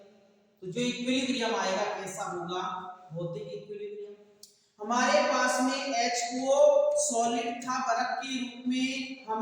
तो जो इक्विलिब्रियम आएगा कैसा होगा, भौतिक इक्विलिब्रियम। हमारे पास में H2O सॉलिड था बर्फ के रूप में,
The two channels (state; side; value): identical; both; correlation 1.00